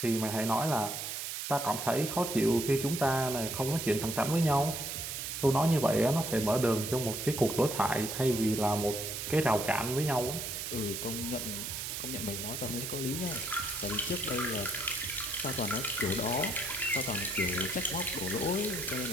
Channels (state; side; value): noise; right; hiss, 5 dB below the sound